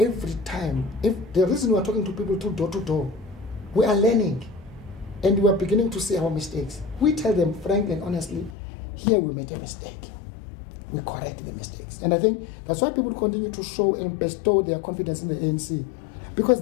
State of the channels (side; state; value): right; drops out; at 8.6 s